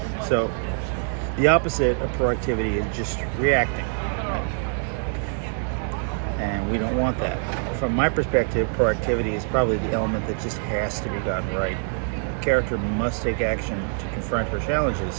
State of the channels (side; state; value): left; silent; 56 dB below the other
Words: So the opposite of proactivity is just reacting, right? And we don't want that. From my perspective, proactivity is probably the element that just has to be gotten right. A character must take action to confront her